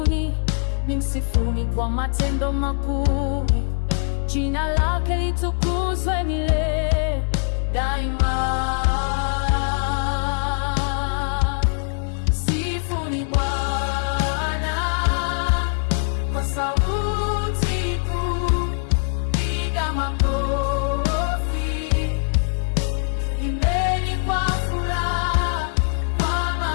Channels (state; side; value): silent; right; digital silence